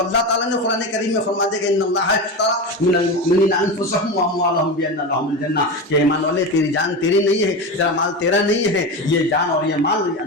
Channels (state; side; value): normal; both; correlation 0.22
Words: تعالیٰ نے قرآن کریم میں فرما دیا کہ ان اللہ اشتری من المؤمنین انفسهم واموالهم بان لهم الجنہ، کہ ایمان والے تیری جان تیری نہیں ہے، تیرا مال تیرا نہیں ہے، یہ جان اور یہ مال